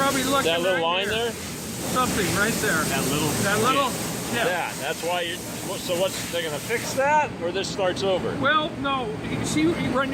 looking That little right line there? Something right there. That little. Yeah. Yeah, that's why you. So what's they're gonna fix that, or this starts over? Well, no. You see, you run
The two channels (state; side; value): identical; both; correlation 1.00